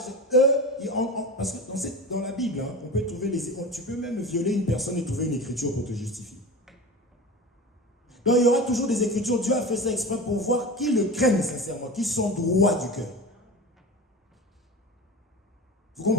eux, parce que dans la Bible, on peut trouver tu peux même violer une personne et trouver une écriture pour te justifier. Donc il y aura toujours des écritures. Dieu a fait ça exprès pour voir qui le craignent sincèrement, qui sont droits du cœur. Vous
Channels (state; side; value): normal; both; correlation 0.31